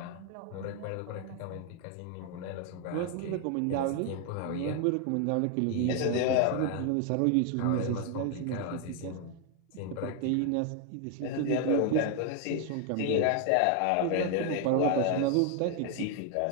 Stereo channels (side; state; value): both; different; correlation 0.00